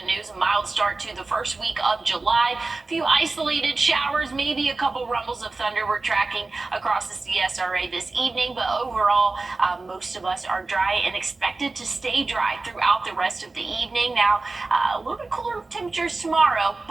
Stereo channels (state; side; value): quieter; left; 3.5 dB